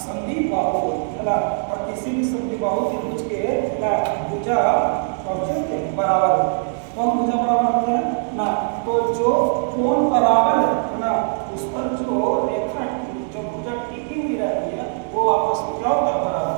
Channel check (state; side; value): silent; left; digital silence